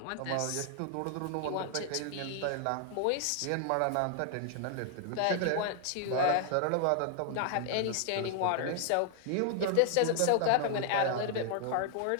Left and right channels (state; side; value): different; both; correlation 0.00